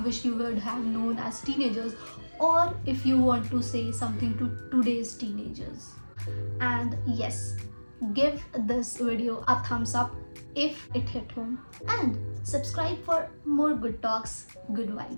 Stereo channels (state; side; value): inverted; both; correlation -1.00